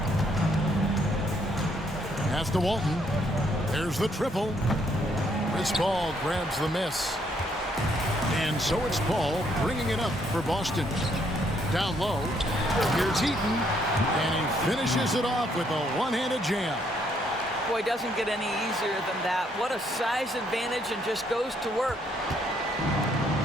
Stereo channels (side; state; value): both; normal; correlation 0.70